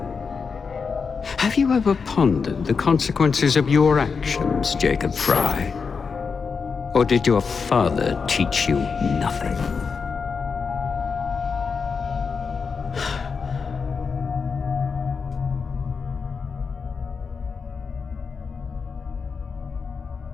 Have you ever pondered the consequences of your actions, Jacob Fry? Or did your father teach you nothing?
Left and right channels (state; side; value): quieter; right; 5.4 dB